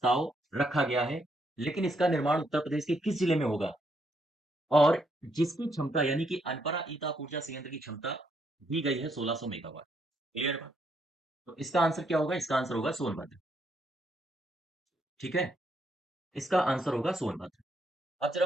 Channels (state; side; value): normal; both; correlation 0.75